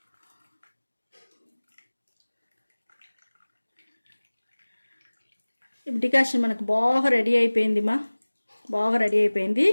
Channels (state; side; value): inverted; both; correlation -1.00